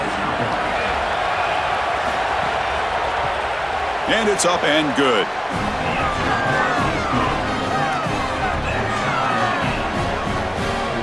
And it's up and good.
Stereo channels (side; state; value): both; identical; correlation 1.00